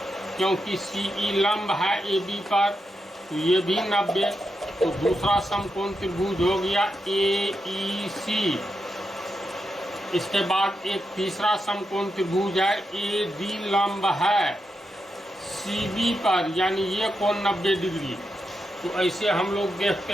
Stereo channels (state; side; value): normal; both; correlation 0.86